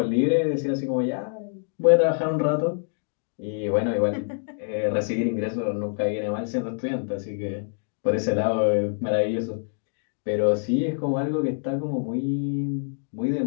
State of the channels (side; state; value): right; silent; digital silence